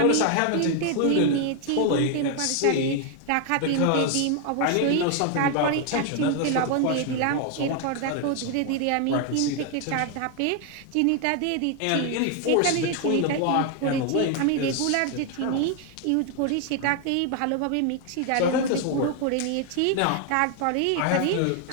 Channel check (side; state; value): both; different; correlation 0.00